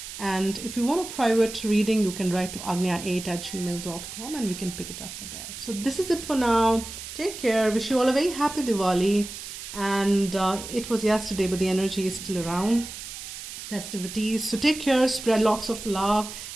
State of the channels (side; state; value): right; noise; hiss, 10 dB below the sound